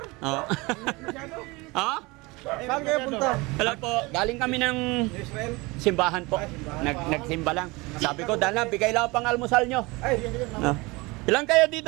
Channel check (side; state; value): left; quieter; 24.1 dB